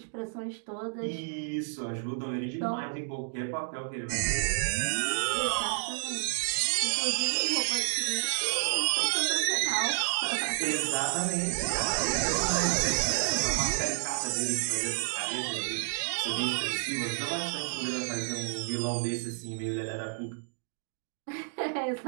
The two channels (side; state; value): left; silent; digital silence